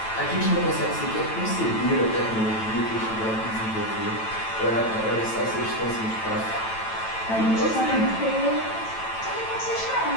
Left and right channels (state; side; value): late; right; 9.1 ms